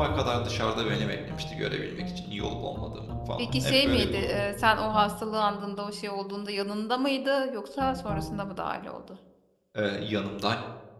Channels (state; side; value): identical; both; correlation 1.00